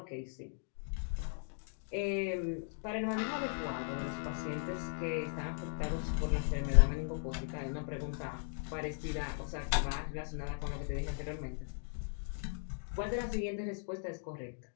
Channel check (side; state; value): right; silent; digital silence